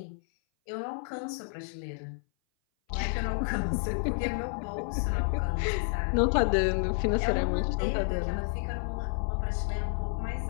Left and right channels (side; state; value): right; silent; 57 dB below the other